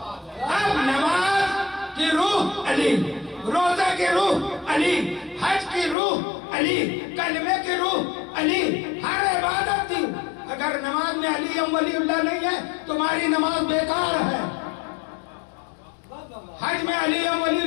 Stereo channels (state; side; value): drops out; right; at 6.0 s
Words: اب نماز کی روح علی، روزہ کی روح علی، حج کی روح علی، کلمے کی روح علی، ہر عبادت کی اگر نماز میں علی ولی اللہ نہیں ہے تمہاری نماز بیکار ہے، حج میں علی ولی